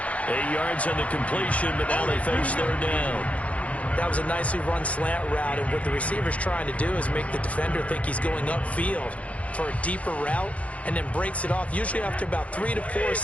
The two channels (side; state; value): right; late; 0.065 ms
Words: 8 yards on the completion, but now they face 3rd down. That was a nicely run slant route, and what the receiver's trying to do is make the defender think he's going upfield for a deeper route, and then breaks it off, usually after about 3 to 4